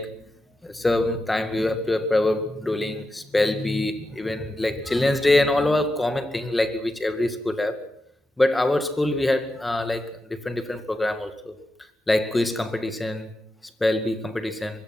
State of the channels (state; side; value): normal; both; correlation 0.88